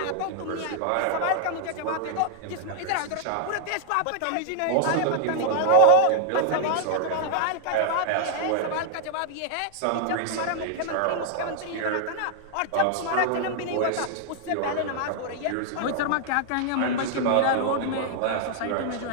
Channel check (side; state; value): both; different; correlation 0.00